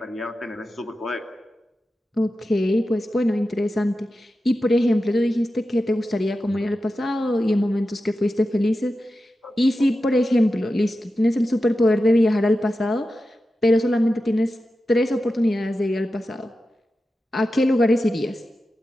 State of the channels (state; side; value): normal; both; correlation 0.92